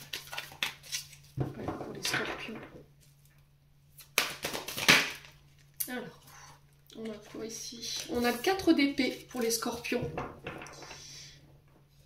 Voilà pour les scorpions. Alors, on a quoi ici? On a le 4 d'épée pour les scorpions.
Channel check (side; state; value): both; identical; correlation 1.00